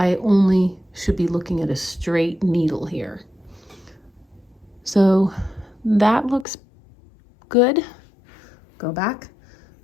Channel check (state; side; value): drops out; right; at 6.5 s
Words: only should be looking at a straight needle here. So that looks good. Go back,